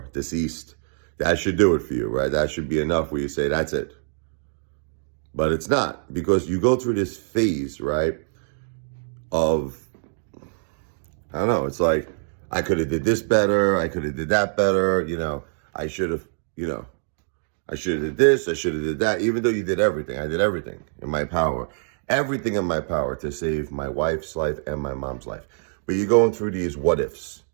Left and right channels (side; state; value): left; silent; digital silence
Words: deceased. That should do it for you, right? That should be enough where you say, that's it. But it's not, because you go through this phase, right, of, I don't know, it's like, I could have did this better, I could have did that better, I should have, I should have did this, I should have did that. Even though you did everything, I did everything in my power. Everything in my power to save my wife's life and my mom's life. But you're going through these what ifs,